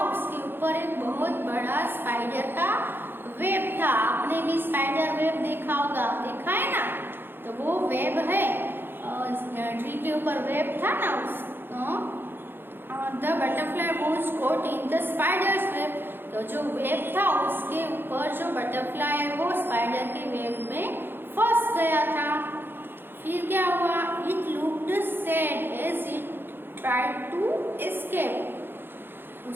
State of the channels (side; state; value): left; late; 0.10 ms